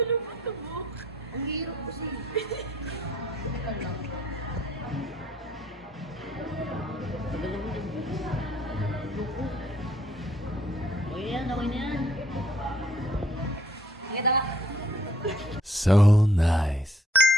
sa buhok. Ang hirap kasi. Teka lang. Tagal ako din. Loko. Okay na yan. Kita ka. So nice.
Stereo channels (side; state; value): both; normal; correlation 0.64